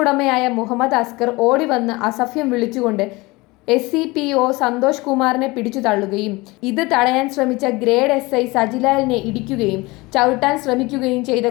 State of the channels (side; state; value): right; quieter; 22.9 dB